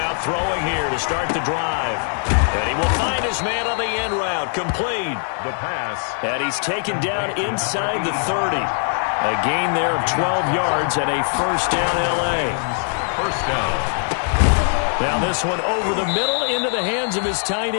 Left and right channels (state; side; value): silent; right; 57 dB below the other